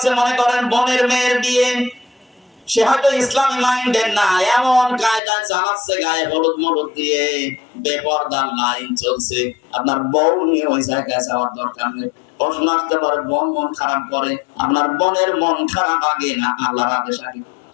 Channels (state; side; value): drops out; right; at 5.2 s